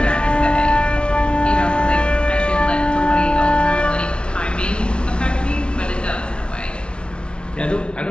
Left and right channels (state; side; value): late; right; 0.057 ms